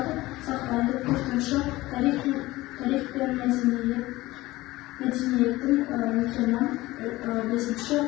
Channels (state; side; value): quieter; right; 18.6 dB